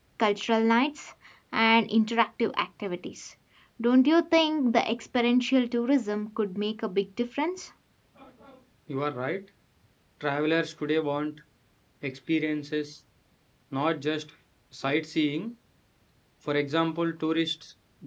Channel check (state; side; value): identical; both; correlation 1.00